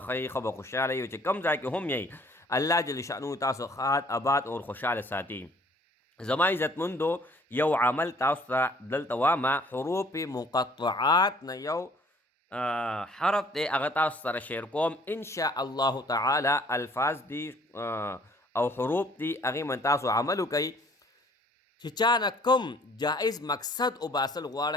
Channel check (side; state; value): both; normal; correlation 0.57